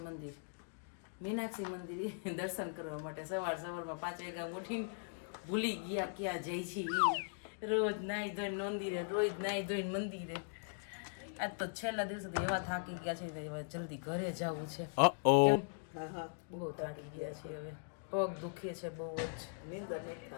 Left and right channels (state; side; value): silent; right; digital silence